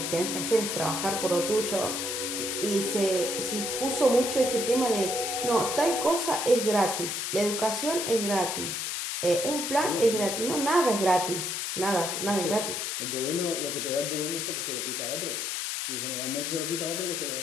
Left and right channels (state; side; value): noise; left; hiss, 2 dB below the sound